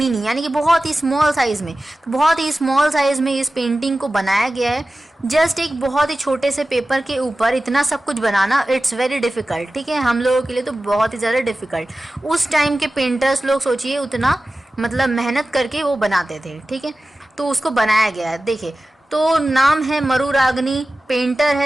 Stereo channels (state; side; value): normal; both; correlation 0.95